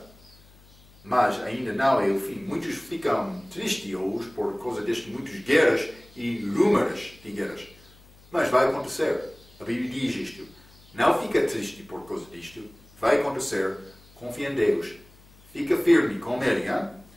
Mas ainda não é o fim. Muitos ficam tristes hoje por causa destas muitas guerras e rumores de guerras. Mas vai acontecer. A Bíblia diz isto. Não fica triste por causa disto. Vai acontecer. Confia em Deus. Fica firme com Ele.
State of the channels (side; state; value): left; noise; hum, 25 dB below the sound